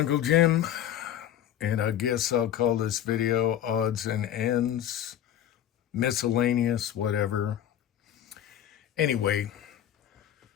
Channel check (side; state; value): right; quieter; 10.9 dB